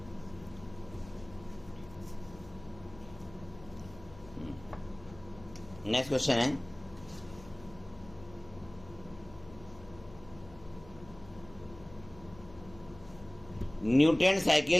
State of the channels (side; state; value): left; noise; hum, 19 dB below the sound